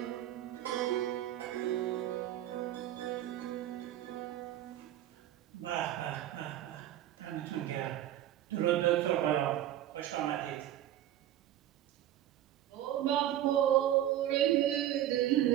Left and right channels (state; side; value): quieter; left; 12.5 dB